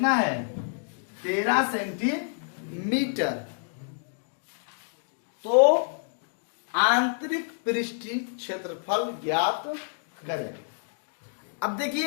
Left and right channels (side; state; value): right; silent; digital silence